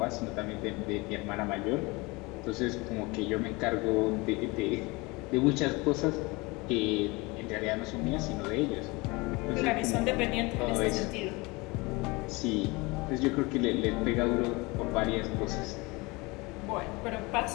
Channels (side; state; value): right; quieter; 25.0 dB